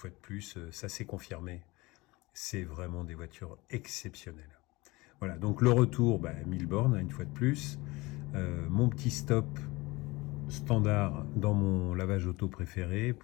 de plus, ça s'est confirmé. C'est vraiment des voitures exceptionnelles. Voilà, donc le retour, 1000 bornes une fois de plus. Mon petit stop standard dans mon lavage auto préféré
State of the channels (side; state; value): right; quieter; 22.5 dB